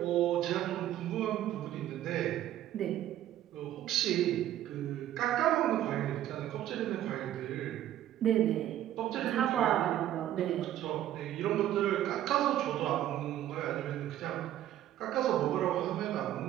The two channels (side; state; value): left; quieter; 12.4 dB